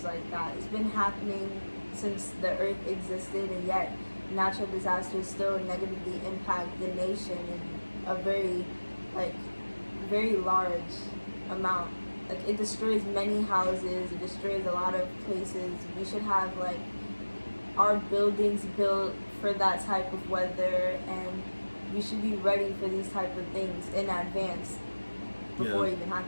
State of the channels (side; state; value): both; inverted; correlation -1.00